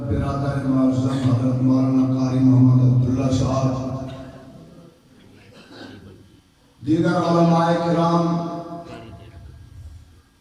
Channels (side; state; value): both; identical; correlation 1.00